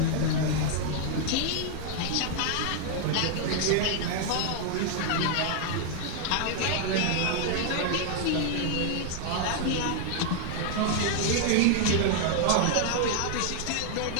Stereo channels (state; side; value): different; both; correlation 0.00